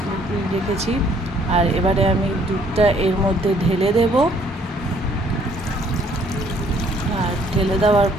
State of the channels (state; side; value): normal; both; correlation 0.63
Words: রেখেছি আর এবারে আমি দুধটা এর মধ্যে ঢেলে দেব। আর ঢেলে দেওয়ার